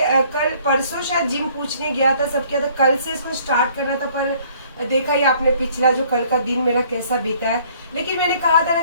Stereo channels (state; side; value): inverted; both; correlation -0.59